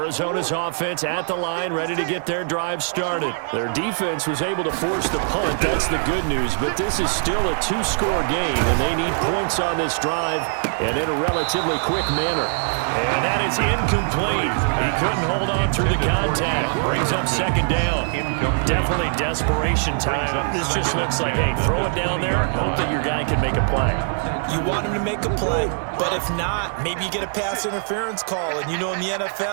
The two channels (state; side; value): silent; left; digital silence